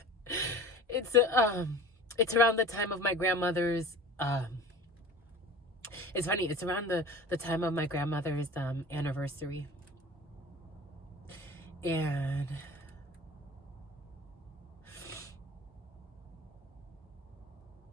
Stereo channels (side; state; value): both; normal; correlation 0.39